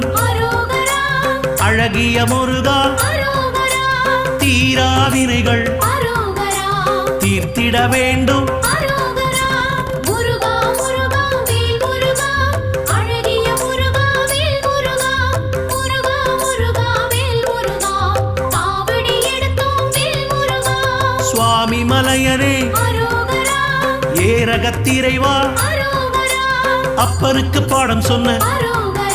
அழகிய முருகா தீராவினைகள் தீர்த்திட வேண்டும் சுவாமி மலையனே ஏரகத்திரைவா அப்பனுக்கு பாடம் சொன்ன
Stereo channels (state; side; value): identical; both; correlation 1.00